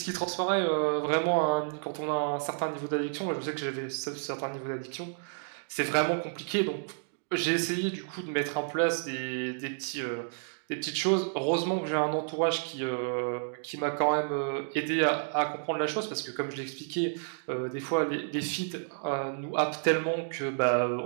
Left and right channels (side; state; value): left; silent; digital silence